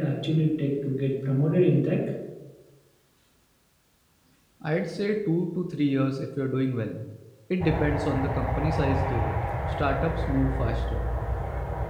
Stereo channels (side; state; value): both; identical; correlation 1.00